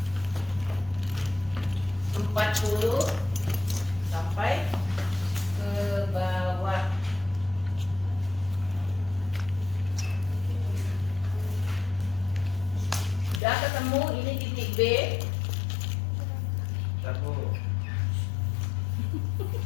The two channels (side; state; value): right; drops out; at 13.4 s